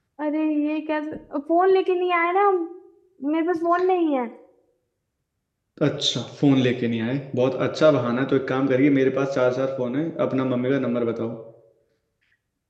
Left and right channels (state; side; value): identical; both; correlation 1.00